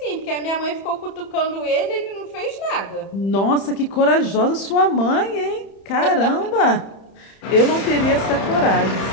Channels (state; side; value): late; right; 31 ms